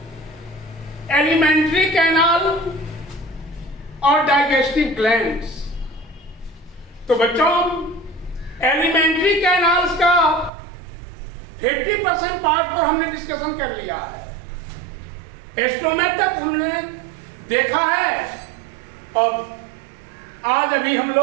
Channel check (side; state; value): left; drops out; at 10.5 s